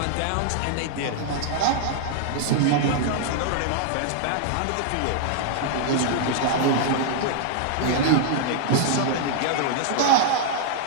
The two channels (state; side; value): different; both; correlation -0.01